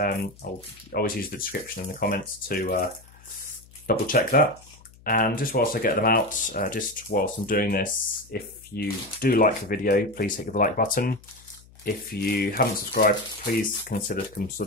always use the description in the comments to double check that. And just whilst I get them out, just whilst I'm doing this, if you do like the video, please hit the like button. If you haven't subscribed, please consider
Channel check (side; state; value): left; noise; hum, 24 dB below the sound